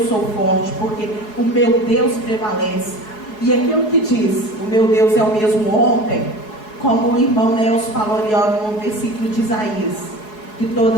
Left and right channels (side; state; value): right; late; 4.7 ms